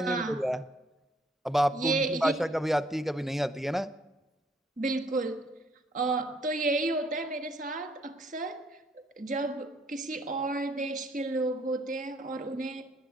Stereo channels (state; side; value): normal; both; correlation 0.66